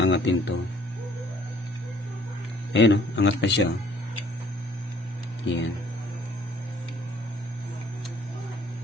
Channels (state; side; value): normal; both; correlation 0.59